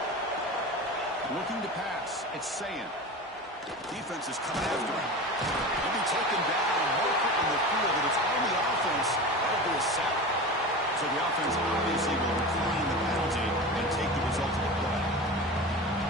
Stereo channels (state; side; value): normal; both; correlation 0.30